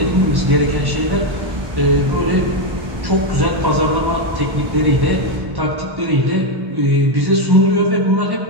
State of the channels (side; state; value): left; late; 1.1 ms